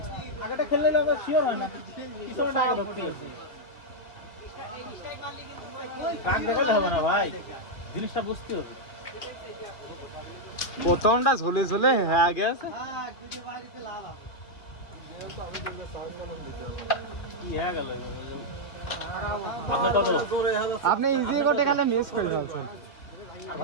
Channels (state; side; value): late; right; 2.2 ms